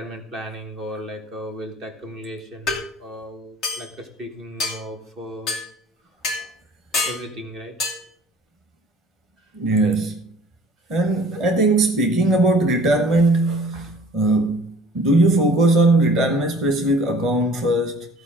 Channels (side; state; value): both; normal; correlation 0.51